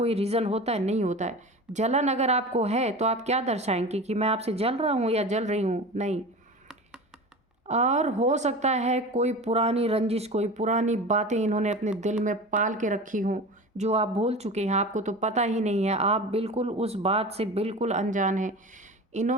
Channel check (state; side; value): normal; both; correlation 0.32